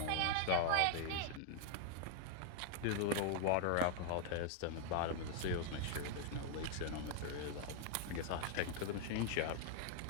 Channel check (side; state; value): both; different; correlation 0.00